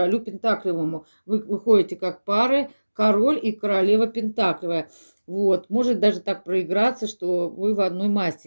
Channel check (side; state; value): both; inverted; correlation -1.00